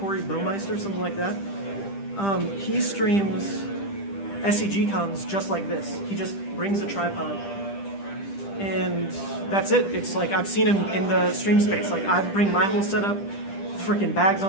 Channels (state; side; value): late; right; 10 ms